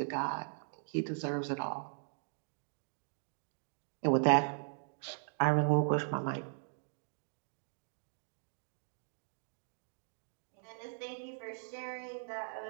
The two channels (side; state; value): left; silent; digital silence